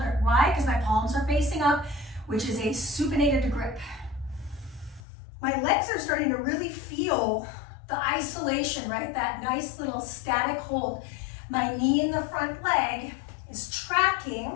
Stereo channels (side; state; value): right; drops out; at 5.0 s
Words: Why? Because my palms are facing up, which is a supinated grip. My legs are starting to really feel the isolation, right? That nice little static hold. My knee in the front leg is tracking